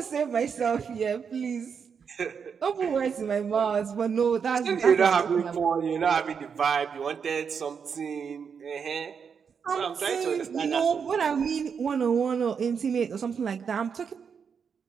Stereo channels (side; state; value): left; quieter; 6.5 dB